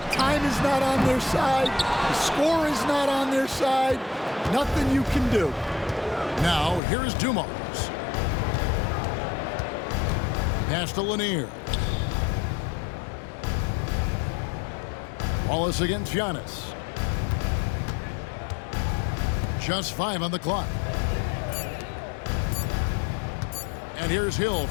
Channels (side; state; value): right; drops out; at 6.8 s